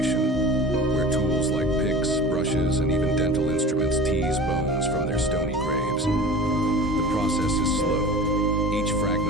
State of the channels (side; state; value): both; normal; correlation 0.36